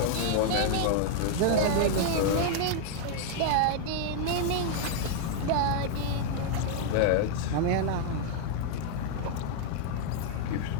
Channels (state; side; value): different; both; correlation 0.00